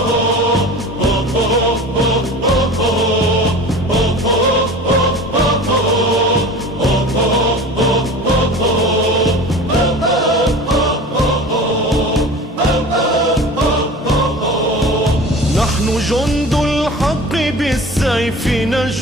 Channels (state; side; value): normal; both; correlation 0.37